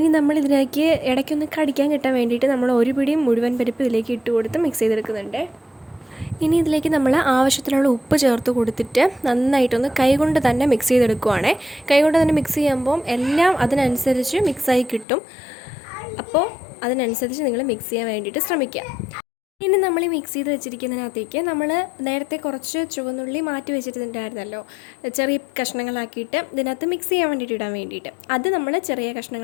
നമ്മളിതിലേക്ക് ഇടയ്ക്കൊന്ന് കടിക്കാൻ കിട്ടാൻ വേണ്ടിയിട്ട് നമ്മൾ ഒരു പിടിയും മുഴുവൻ പരിപ്പ് ഇതിലേക്ക് ഇട്ട് കൊടുത്ത് മിക്സ് ചെയ്തെടുക്കുന്നുണ്ട്. ഇനി ഇതിലേക്ക് നമ്മൾ ആവശ്യത്തിനുള്ള ഉപ്പ് ചേർത്ത് കൊടുത്തിട്ട് നന്നായിട്ടൊന്ന് കൈകൊണ്ട് തന്നെ മിക്സ് ചെയ്തെടുക്കുവാണേ. കൈകൊണ്ട് തന്നെ മിക്സ് ചെയ്യുമ്പം എല്ലാം അതിനനുസരിച്ച് മിക്സായി കിട്ടും. അപ്പോൾ അതിനനുസരിച്ച് നിങ്ങൾ മിക്സ് ചെയ്യാൻ വേണ്ടിയിട്ട് ശ്രമിക്കുക. ഇനി നമ്മൾ ഈ മിക്സ് ചെയ്ത് വെച്ചിരിക്കുന്നതിനകത്തേക്ക് നമ്മൾ നേരത്തെ കുറച്ച് ചുവന്നുള്ളി മാറ്റി വെച്ചിട്ടുണ്ടായിരുന്നല്ലോ, ചെറിയ കഷ്ണങ്ങളാക്കിയിട്ട് ഇതിനകത്ത് മിക്സ് ചെയ്യാൻ വേണ്ടിയിട്ട് ഇടാൻ വേണ്ടിയിട്ട്. അത് നമ്മൾ ചെറിയ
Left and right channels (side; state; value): right; drops out; at 15.1 s